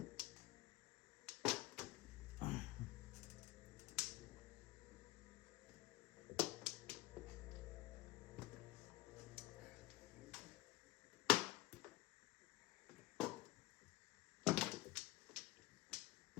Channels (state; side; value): quieter; right; 18.4 dB